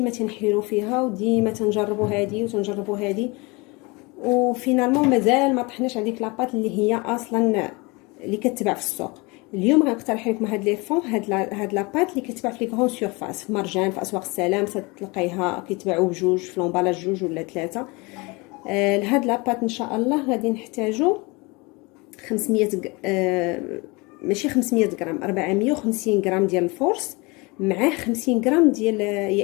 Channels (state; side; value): quieter; right; 26.3 dB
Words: تنحيروا فيها وديما تنجربوا هذه وتنجربوا هذه، وفينالمون مازال ما طحناش على ديك لاباط اللي هي اصلا اللي كتباع في السوق. اليوم غنقترح لكم هاد لي فون، هاد لاباط اللي كتباع في لي غران سورفاس، في مرجان، في اسواق السلام، تلقايها كيتباعوا بجوج في لومبالاج جوج ولا ثلاثه. لهاد لاباط ان شاء الله غادي نحتاجو 500 ماشي 500 غرام، 450 غرام ديال الفورس، معاه 50 غرام ديال